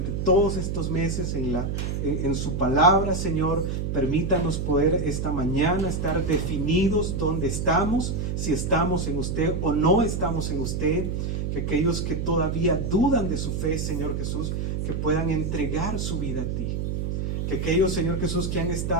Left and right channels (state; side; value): noise; right; hum, 1 dB below the sound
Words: todos estos meses en su palabra, Señor. Permítanos poder esta mañana estar definidos dónde estamos, si estamos en usted o no estamos en usted. Que aquellos que todavía dudan de su fe, Señor Jesús, que puedan entregar su vida a ti. Que aquellos, Señor Jesús, que han